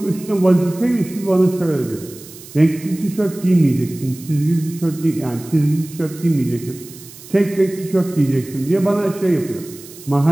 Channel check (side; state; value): right; noise; hiss, 18 dB below the sound